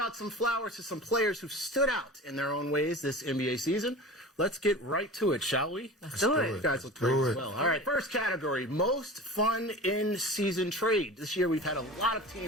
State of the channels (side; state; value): both; normal; correlation 0.35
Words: some flowers to some players who stood out in their own ways this NBA season. Let's get right to it, shall we? Let's do it. You guys look great as well. All right, first category, most fun in-season trade. This year we've had a lot of